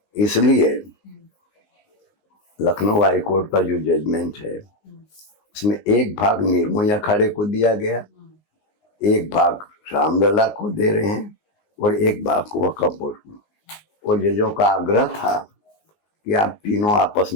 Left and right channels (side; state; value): right; late; 19 ms